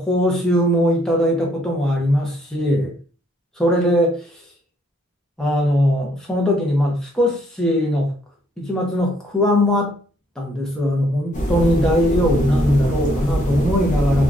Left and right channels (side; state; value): both; normal; correlation 0.69